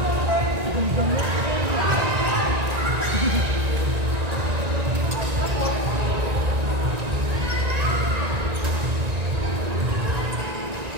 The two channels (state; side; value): late; left; 1.9 ms